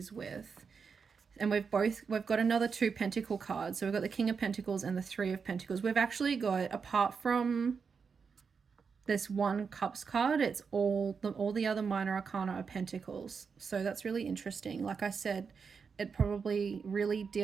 with? And we've got another 2 Pentacle cards. So we've got the King of Pentacles and the 3 of Pentacles. We've actually got, apart from this 1 Cups card, it's all the other minor arcana are Pentacles. So that's really interesting. Like I said, it probably really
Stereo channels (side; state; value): left; quieter; 5.7 dB